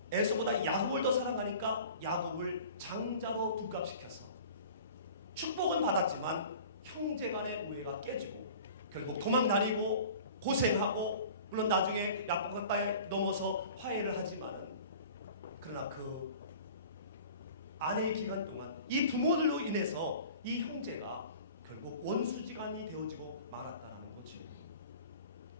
에서보다 야곱을 더 사랑하니까 야곱을 장자로 둔갑시켜서 축복은 받았지만 형제간의 우애가 깨지고 결국 도망다니고 고생하고, 물론 나중에 약간가에 넘어서 화해를 하지만, 그러나 그 아내의 기간 동안 이 부모들로 인해서 이 형제가 결국 원수지간이 되어지고 말았다는 거죠.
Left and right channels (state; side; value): inverted; both; correlation -0.43